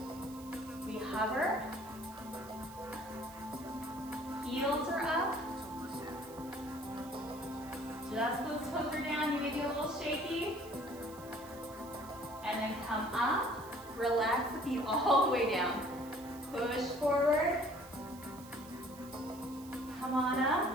We hover. Heels are up. Just those toes are down. You may be a little shaky. And then come up. Relax the feet all the way down. Push forward. Come on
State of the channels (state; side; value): noise; right; hiss, 19 dB below the sound